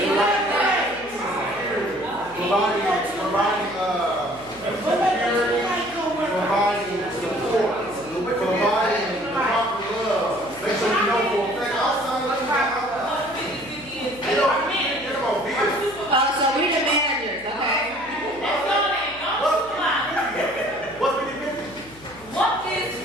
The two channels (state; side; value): noise; left; hum, 22 dB below the sound